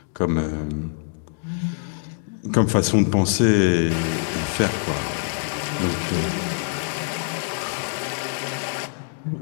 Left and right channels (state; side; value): silent; right; digital silence